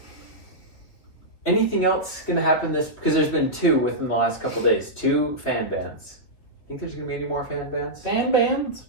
Anything else going to happen because there's been 2 within the last couple days. 2 fan bans. Think there's going to be any more fan bans? Fan bans?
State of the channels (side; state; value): right; late; 3.2 ms